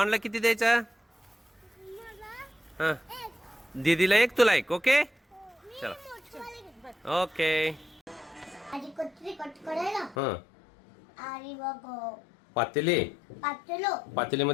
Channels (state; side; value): drops out; right; at 10.2 s